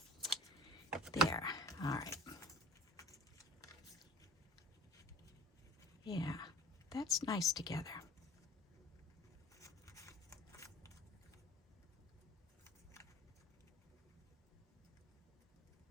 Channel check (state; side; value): normal; both; correlation 0.42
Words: There. All right. Yeah, that's nice together.